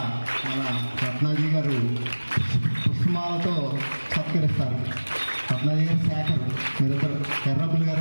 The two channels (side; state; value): both; inverted; correlation -1.00